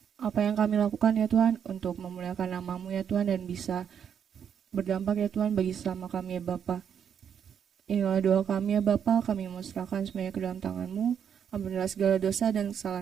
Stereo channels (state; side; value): quieter; left; 8.0 dB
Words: apa yang kami lakukan ya Tuhan untuk memuliakan nama-Mu ya Tuhan, dan bisa berdampak ya Tuhan bagi sesama kami ya Bapa. Inilah doa kami ya Bapa, kami mau serahkan semuanya ke dalam tangan-Mu. Ampunilah segala dosa dan